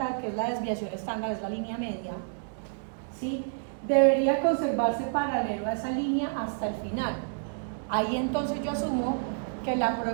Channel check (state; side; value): silent; left; digital silence